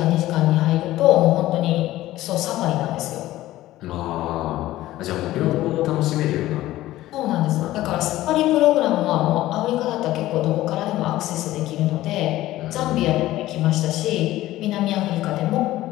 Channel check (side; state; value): right; quieter; 15.6 dB